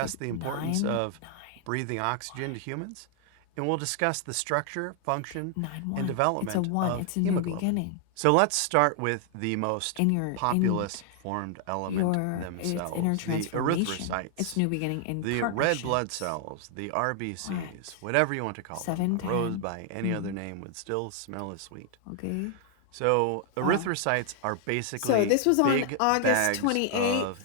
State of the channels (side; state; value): both; different; correlation 0.00